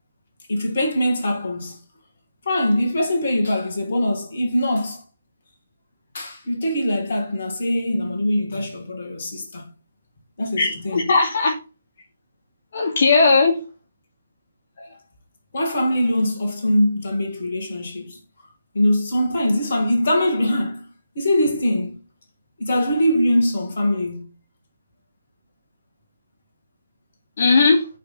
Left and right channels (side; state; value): both; inverted; correlation -0.86